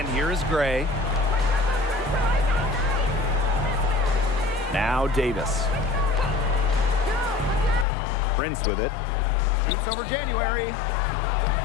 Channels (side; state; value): right; drops out; at 7.9 s